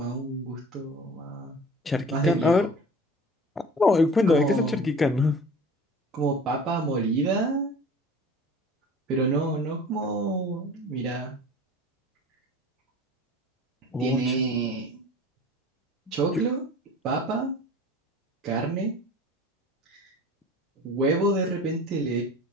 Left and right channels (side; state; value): both; normal; correlation 0.41